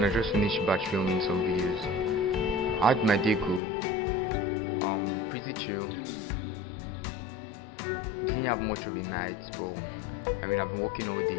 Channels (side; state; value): right; drops out; at 3.6 s